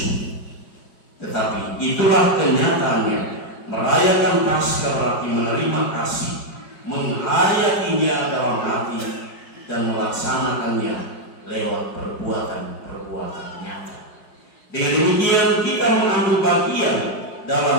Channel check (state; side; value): late; right; 4.9 ms